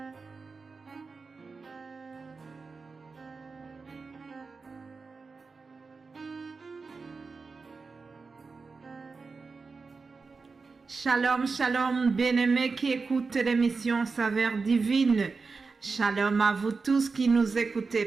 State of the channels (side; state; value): left; quieter; 4.4 dB